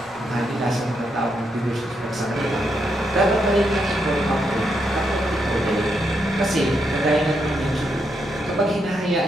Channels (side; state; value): both; normal; correlation 0.80